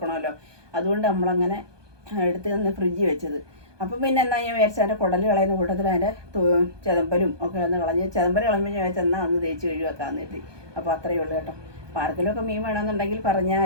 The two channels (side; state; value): left; late; 1.2 ms